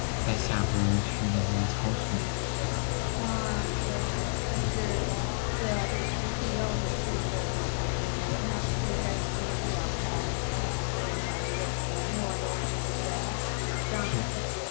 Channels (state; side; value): silent; right; 58 dB below the other